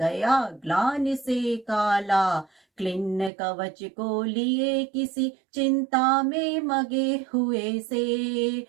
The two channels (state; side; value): drops out; left; at 3.3 s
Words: ग्लानि से काला। क्लिन्न कवच को लिए किसी चिंता में मगे हुए से।